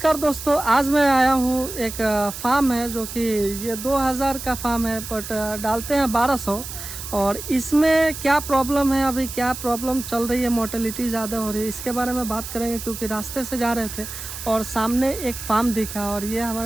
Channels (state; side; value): noise; right; hiss, 9 dB below the sound